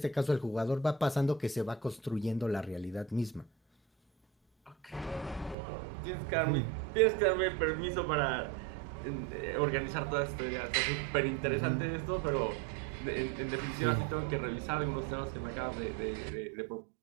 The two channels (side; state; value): left; drops out; at 5.6 s